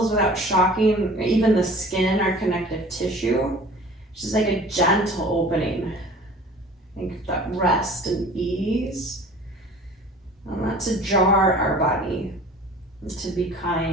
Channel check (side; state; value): both; normal; correlation 0.45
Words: without shocking even the skin, our connective tissue. It's just like a gentle opening. I think that rest and ease. And not to jar our body, to be